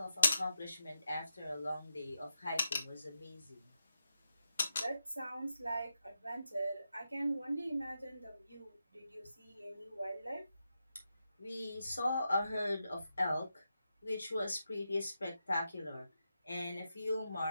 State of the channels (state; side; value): inverted; both; correlation -0.87